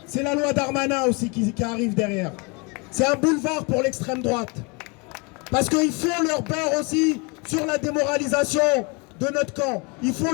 C'est la loi Darmanin aussi qui arrive derrière. C'est un boulevard pour l'extrême droite. Parce qu'ils font leur beurre aussi sur la démoralisation de notre camp. Ils font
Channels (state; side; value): quieter; right; 29.7 dB